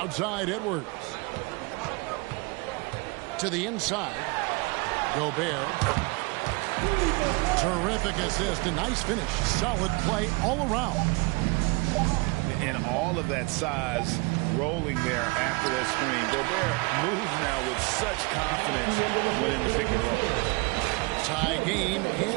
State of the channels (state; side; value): quieter; left; 27.7 dB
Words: Edwards. To the inside. Gobert. Terrific assist. A nice finish. Solid play all around. And all of that size rolling there after that screen. Gobert moves now with such confidence when in the pick and roll. Tie game